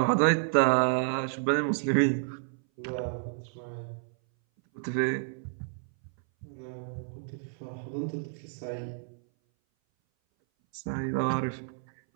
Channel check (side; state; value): left; silent; 58 dB below the other